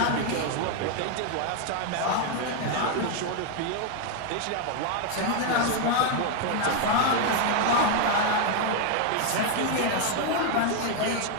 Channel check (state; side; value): different; both; correlation 0.01